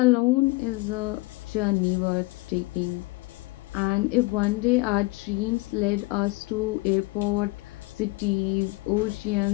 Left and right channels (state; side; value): quieter; right; 23.5 dB